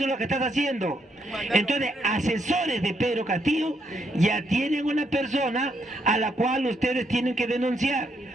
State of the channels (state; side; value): normal; both; correlation 0.75